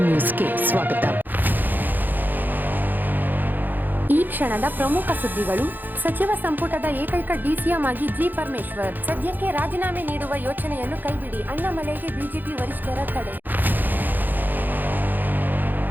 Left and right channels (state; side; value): late; left; 0.087 ms